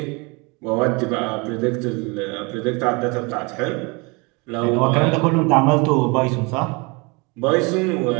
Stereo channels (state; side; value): quieter; left; 28.8 dB